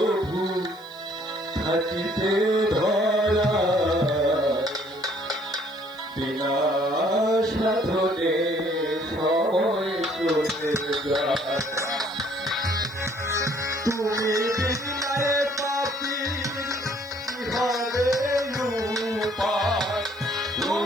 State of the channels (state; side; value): noise; left; hiss, 28 dB below the sound